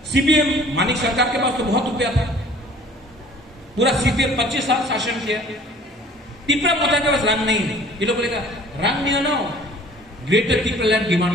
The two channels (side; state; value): both; normal; correlation 0.51